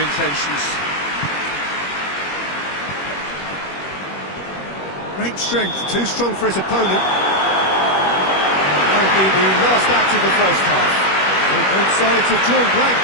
Great strength, too strong for his opponent. That will be the last act of the first half. So both sides have drawn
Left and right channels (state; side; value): late; right; 21 ms